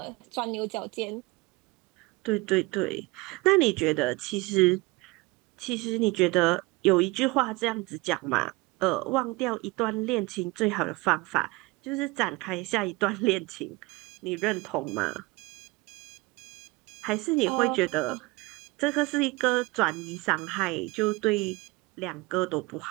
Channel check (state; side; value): quieter; left; 22.9 dB